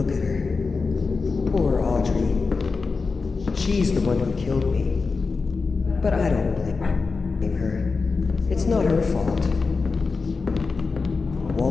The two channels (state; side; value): quieter; right; 4.4 dB